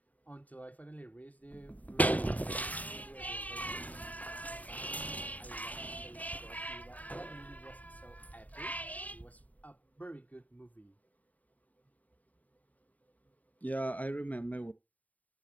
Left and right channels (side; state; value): right; late; 0.074 ms